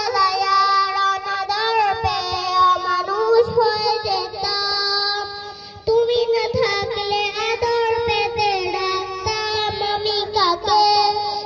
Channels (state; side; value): identical; both; correlation 1.00